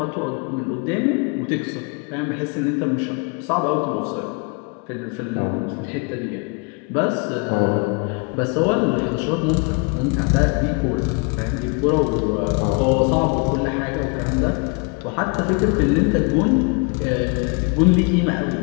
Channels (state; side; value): quieter; right; 33.2 dB